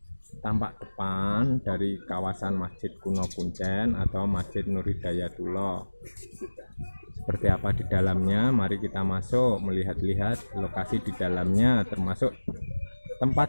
tampak depan dari kawasan Masjid Kuno Kuncen atau Masjid Nur Hidayatullah. Seperti apa di dalamnya, mari kita masuk melihat-lihat lokasi di dalamnya, termasuk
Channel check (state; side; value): inverted; both; correlation -1.00